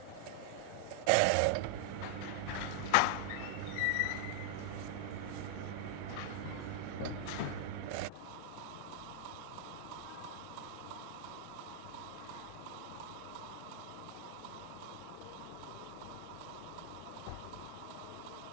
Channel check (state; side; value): different; both; correlation -0.01